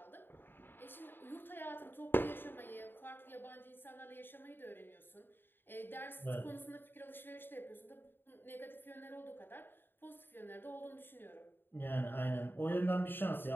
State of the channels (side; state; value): right; late; 0.097 ms